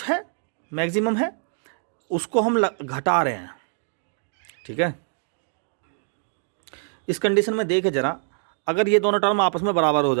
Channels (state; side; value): silent; left; 62 dB below the other